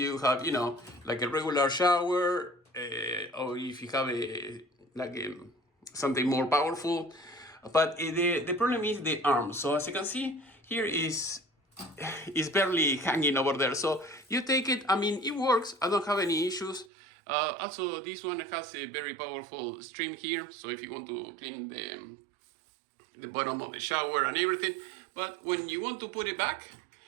have, like a regular shower, or if you have something more powerful. But the problem is the arm. So as you can see, here is barely hanging over there. So you take it, it works. I don't have any issues. Also, this one has a very powerful stream here. So if you want to clean the bottom of the shower and everything. But when you want to put it back,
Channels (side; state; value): left; drops out; at 16.9 s